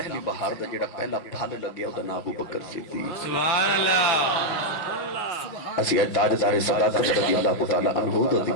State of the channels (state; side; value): late; right; 6.0 ms